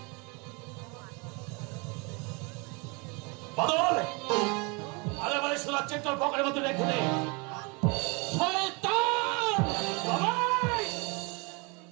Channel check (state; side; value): quieter; left; 30.2 dB